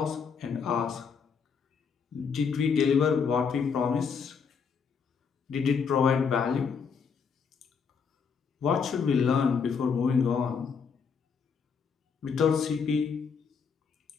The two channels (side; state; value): right; quieter; 6.1 dB